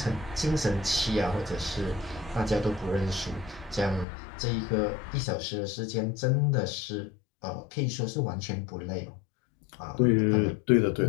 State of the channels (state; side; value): drops out; right; at 4.0 s